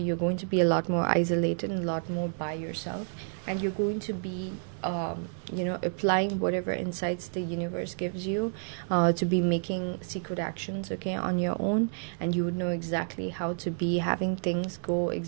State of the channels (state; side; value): silent; left; 58 dB below the other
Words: going to be a lot more isolated and a lot more by yourself, and you're going to be you know, applying whatever insights the universe gives you to be making secret actions, okay, on your own, and you would know exactly how to be having things go